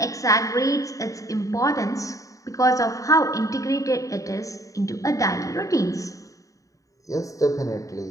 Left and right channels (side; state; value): right; late; 0.16 ms